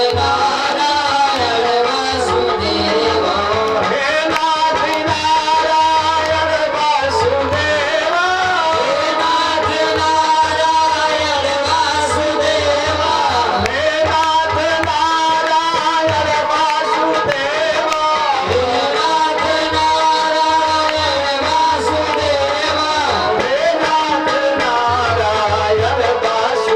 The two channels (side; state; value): both; identical; correlation 1.00